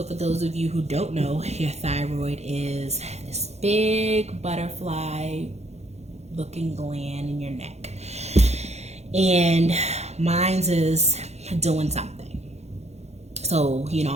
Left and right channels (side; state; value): left; late; 0.31 ms